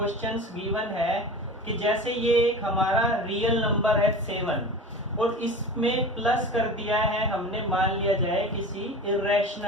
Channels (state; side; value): normal; both; correlation 0.34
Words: गिवन है कि जैसे ये एक हमारा रियल नंबर है 7 और इसमें प्लस कर दिया है हमने, मान लिया जाए किसी